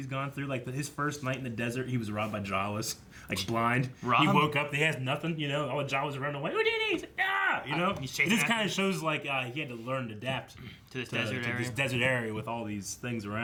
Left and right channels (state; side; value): identical; both; correlation 1.00